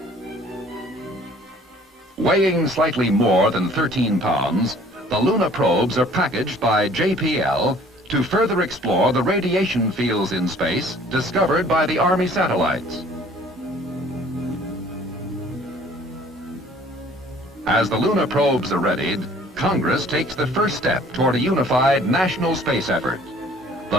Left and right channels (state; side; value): normal; both; correlation 0.54